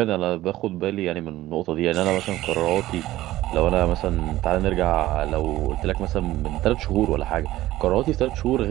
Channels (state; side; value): quieter; left; 15.7 dB